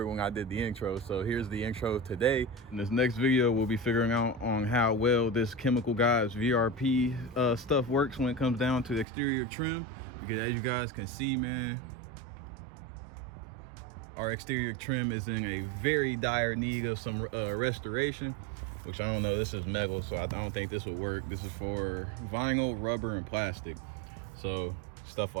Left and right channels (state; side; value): drops out; left; at 9.1 s